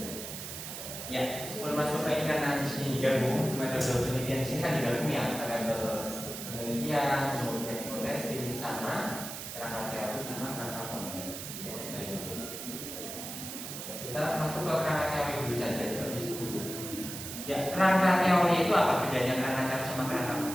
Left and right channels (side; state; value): right; noise; hiss, 8 dB below the sound